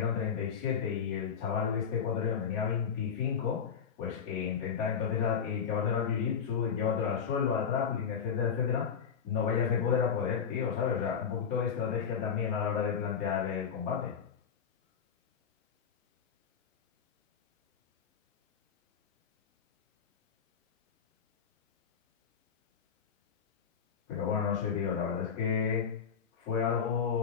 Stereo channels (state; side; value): quieter; right; 7.1 dB